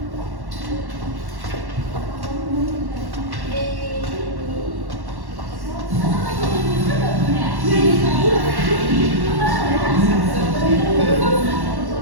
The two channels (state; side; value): late; left; 1.1 ms